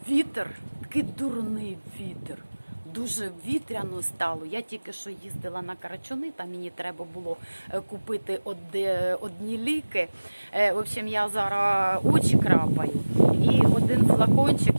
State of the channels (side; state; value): both; inverted; correlation -1.00